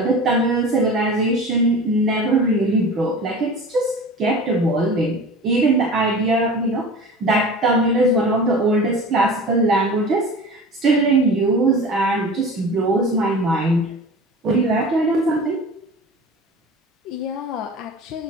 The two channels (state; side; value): normal; both; correlation 0.37